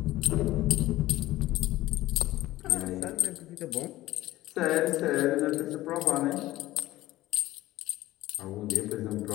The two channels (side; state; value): right; quieter; 16.5 dB